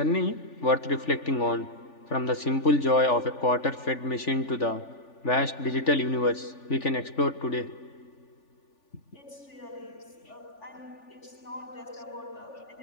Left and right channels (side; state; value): right; late; 3.4 ms